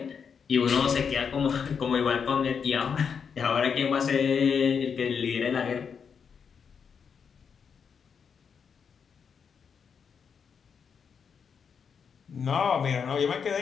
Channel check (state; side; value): quieter; right; 6.5 dB